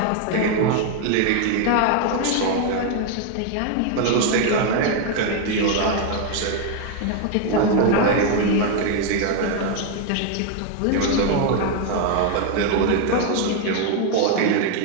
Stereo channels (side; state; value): both; different; correlation 0.01